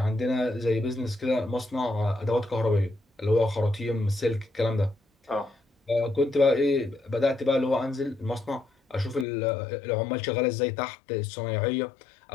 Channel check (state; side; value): drops out; right; at 9.2 s